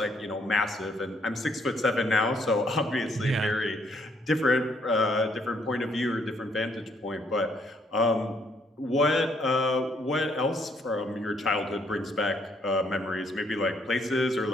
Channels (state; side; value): normal; both; correlation 0.69